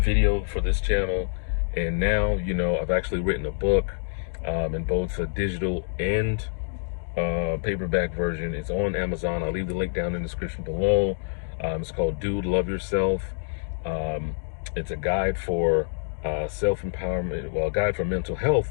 for this channel and now, I've actually written a book in both a digital and paperback version. It's on Amazon. I'll leave the link down in the description below. It's called Dude, Love Yourself. It's a guide for self-empowerment, well, a guide for mental health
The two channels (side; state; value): right; silent; digital silence